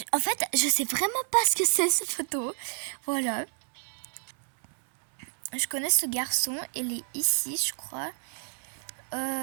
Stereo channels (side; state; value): left; silent; 58 dB below the other